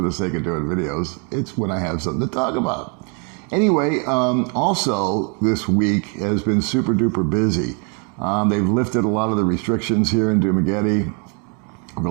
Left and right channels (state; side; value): quieter; left; 36.7 dB